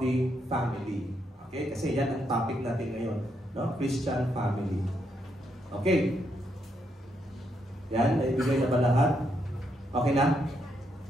family. Okay, kasi yan ang topic natin ngayon, no, Christian family. Okay. Yan, naibigay na ba lahat? Okay na?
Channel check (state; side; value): normal; both; correlation 0.78